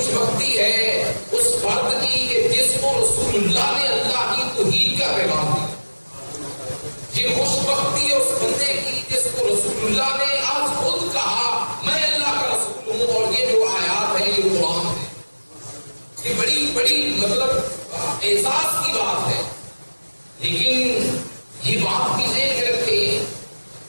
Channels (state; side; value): inverted; both; correlation -1.00